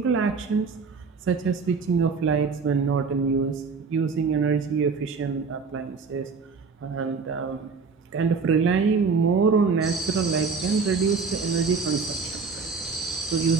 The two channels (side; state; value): left; quieter; 5.0 dB